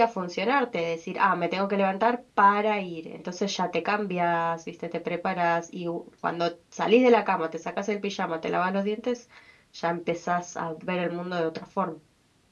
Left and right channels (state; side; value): identical; both; correlation 1.00